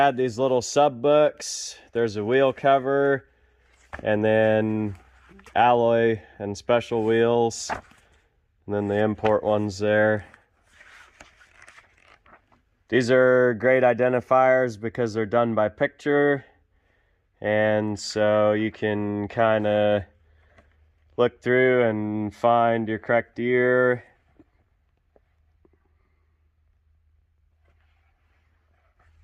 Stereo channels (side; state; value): both; identical; correlation 1.00